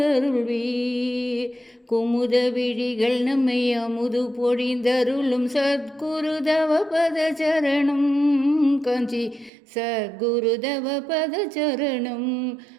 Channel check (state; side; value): drops out; left; at 9.5 s